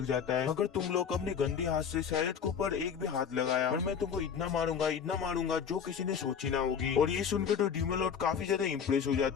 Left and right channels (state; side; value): quieter; right; 7.2 dB